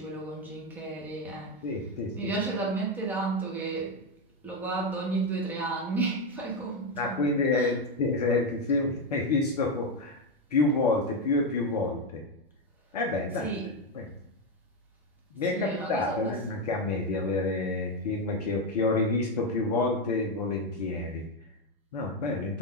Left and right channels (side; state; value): both; normal; correlation 0.08